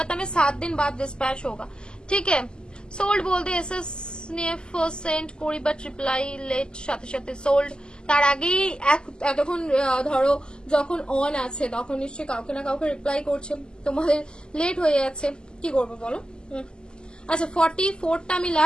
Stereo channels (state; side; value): late; right; 0.047 ms